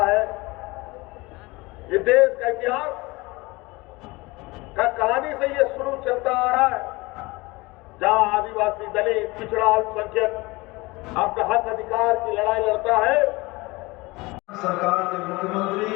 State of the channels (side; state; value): right; quieter; 23.0 dB